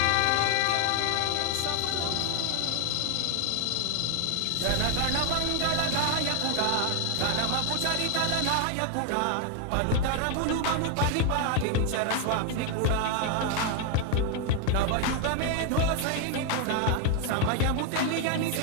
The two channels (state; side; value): different; both; correlation 0.00